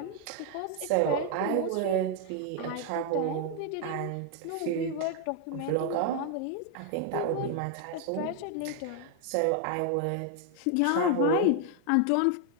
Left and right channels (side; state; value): both; different; correlation 0.01